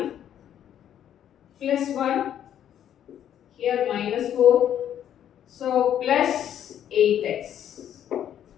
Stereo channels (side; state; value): right; quieter; 10.3 dB